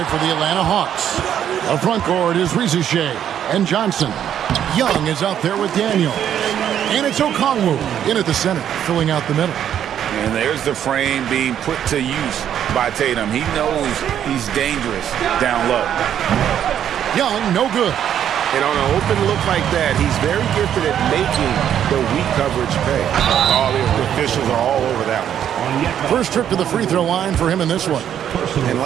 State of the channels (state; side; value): quieter; left; 9.8 dB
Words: for the Atlanta Hawks. The front court is Rizichet and Johnson. Young is out there with Daniel. And it's Okongwu in at the center, filling out the middle. And there's the frame being put to use by Tatum. He knows he's dangerous down low. Young, no good. And on an open look like that, he's very gifted at making the weak coverage pay. All the officials are all over that one. First trip to the free throw line for him in this one. And